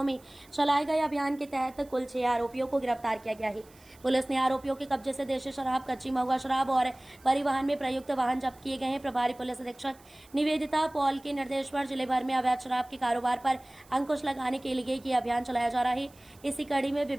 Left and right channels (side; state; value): right; noise; hiss, 27 dB below the sound